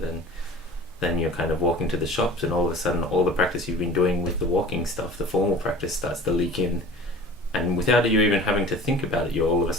then you're kind of walking to the shops, and all of a sudden all the practice you've been doing with the walking stuff, the formal practice, starts to leak in, and without you even having to think about it, you're all of a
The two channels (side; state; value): both; normal; correlation 0.42